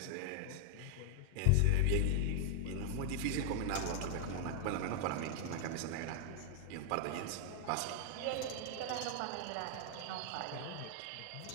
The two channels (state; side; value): different; both; correlation 0.00